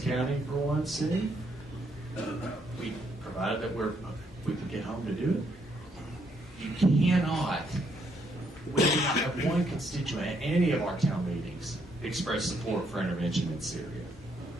for one soon. We provided that we can get home to do it. You cannot. We do not have one constituent at any of our town meetings express support for intervention in Syria.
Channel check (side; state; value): both; normal; correlation 0.73